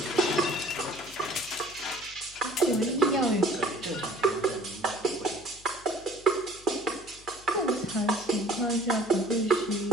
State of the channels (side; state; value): left; noise; hum, 24 dB below the sound